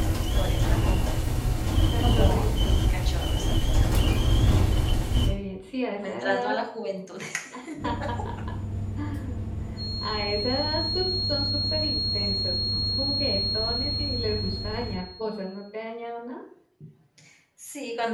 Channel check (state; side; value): identical; both; correlation 1.00